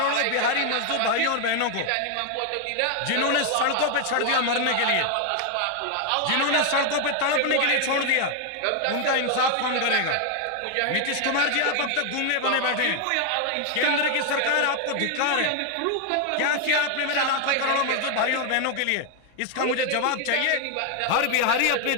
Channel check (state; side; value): different; both; correlation 0.00